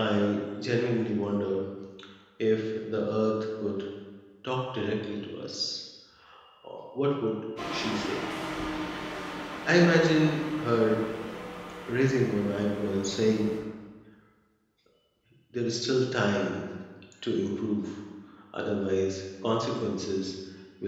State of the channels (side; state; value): both; identical; correlation 1.00